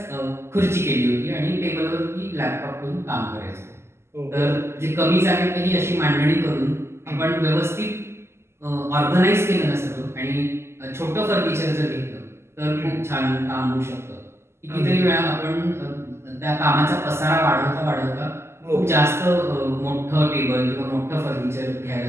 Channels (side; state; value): left; late; 0.12 ms